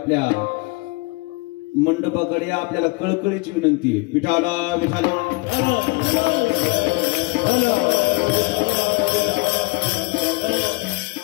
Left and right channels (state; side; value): quieter; right; 27.4 dB